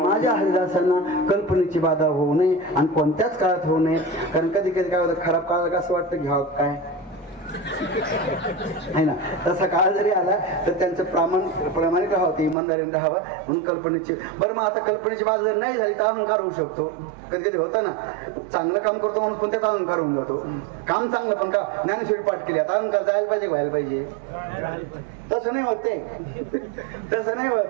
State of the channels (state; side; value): drops out; left; at 12.6 s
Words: हरिदासांना कल्पनेची बाधा होऊ नये, आणि कोणत्याच काळात होऊ नये. कारण कधी कधी काय होतं, खराब काळात असं वाटतं घ्यावं काय, आहे ना. तसा काळ जरी आला तर त्यांचं प्रामाणिक राहावं, इमानदारीने राहावं म्हणून कल्पनेची. बरं मग आता कल्पनेची बाजू जर नाही झाली तर अहंकार होऊ शकतो. कधी कधी होतं ना, चांगलं काम करतो म्हणून पण त्याचा अहंकार होऊन जातो. काम चांगलं पण का ज्ञानेश्वरी पाठ केली आता अहंकार जायला पाहिजे, व्हायला पाहिजे. तसं नाही होत ते, तसं नाही